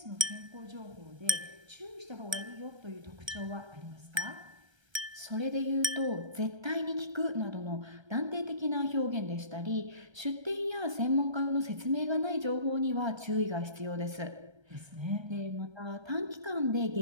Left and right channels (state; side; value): late; left; 1.3 ms